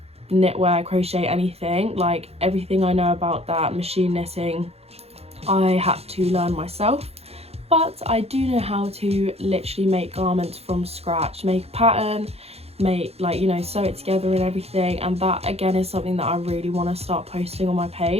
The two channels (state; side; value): late; left; 0.29 ms